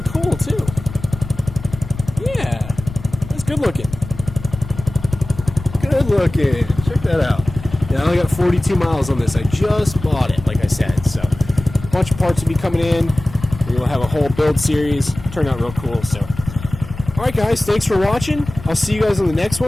cool, too. Yeah. That's good looking. Good looking. Check that out. Yeah, I only got 42 miles on this. I just bought it, like I said. So, a bunch of parts will be coming in. We'll have a whole build series. Turned out real cool, so. Alright guys, thanks for watching. I'll see you guys on the next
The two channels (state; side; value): noise; left; rumble, 13 dB below the sound